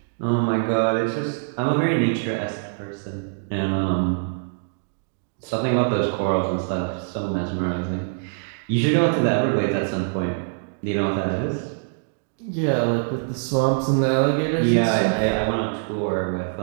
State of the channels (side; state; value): left; silent; digital silence